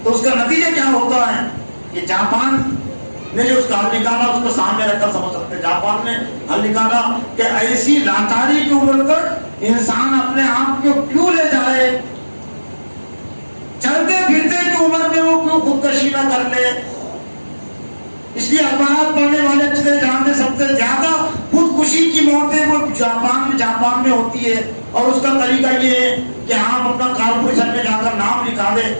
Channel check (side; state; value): both; inverted; correlation -1.00